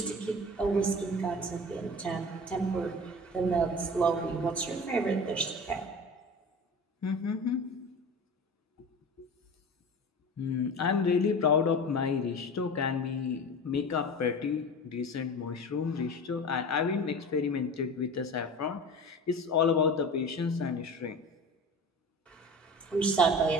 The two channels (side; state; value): both; normal; correlation 0.34